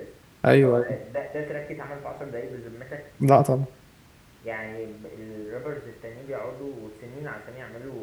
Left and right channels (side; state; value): both; identical; correlation 1.00